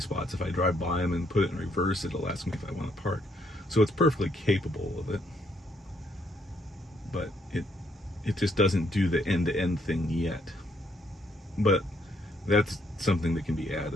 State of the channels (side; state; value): both; normal; correlation 0.71